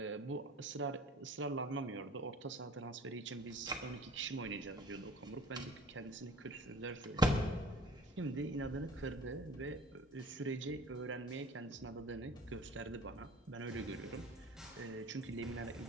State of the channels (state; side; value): normal; both; correlation 0.46